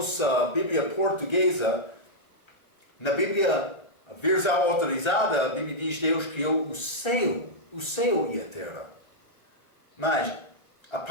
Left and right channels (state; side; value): late; right; 1.3 ms